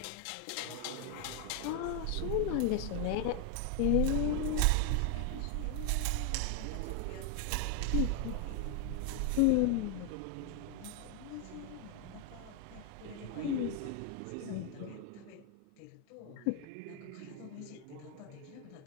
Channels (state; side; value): different; both; correlation 0.00